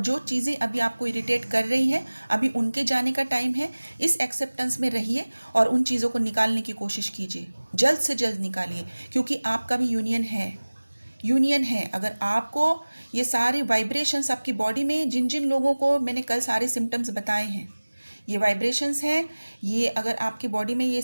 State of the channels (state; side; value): inverted; both; correlation -1.00